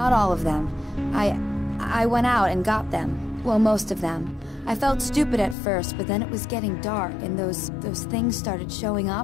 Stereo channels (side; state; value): right; drops out; at 5.6 s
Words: all of them. I went out and got them. Well, most of them. I felt stupid at first, but then it was getting dark, and those things started showing